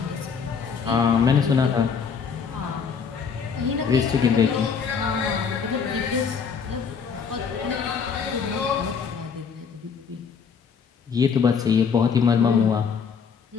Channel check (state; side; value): quieter; right; 6.2 dB